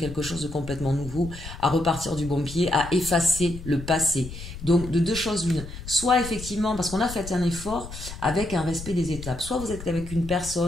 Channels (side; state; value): left; noise; rumble, 11 dB below the sound